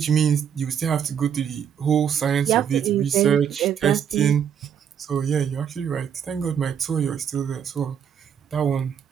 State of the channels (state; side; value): quieter; left; 8.3 dB